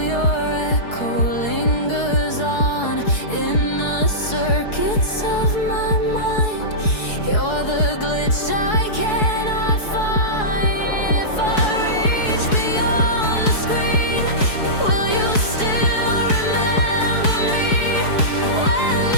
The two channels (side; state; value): right; late; 4.7 ms